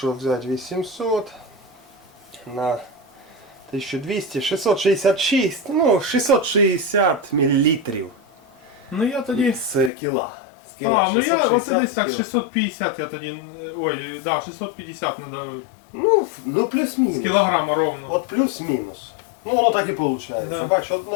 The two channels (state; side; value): drops out; right; at 9.9 s